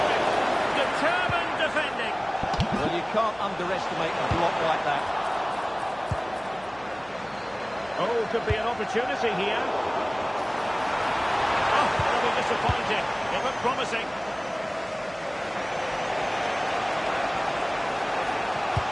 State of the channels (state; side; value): noise; right; hum, 25 dB below the sound